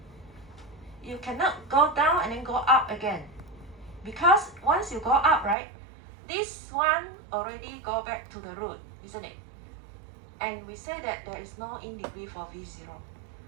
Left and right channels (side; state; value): left; drops out; at 5.6 s